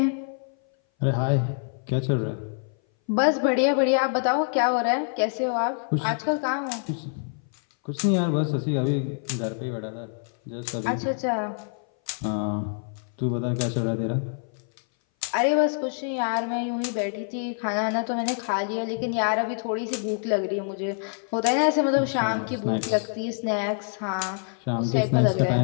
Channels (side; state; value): right; silent; 58 dB below the other